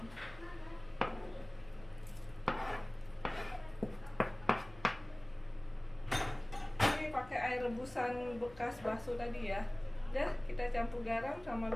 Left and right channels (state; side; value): noise; left; hum, 21 dB below the sound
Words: Pakai air rebusan bekas bakso tadi ya. Udah, kita campur garam sama